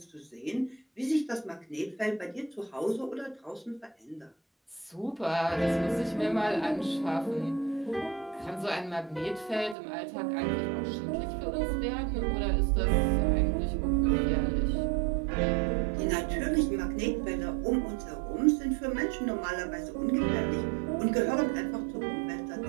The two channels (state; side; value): drops out; left; at 9.8 s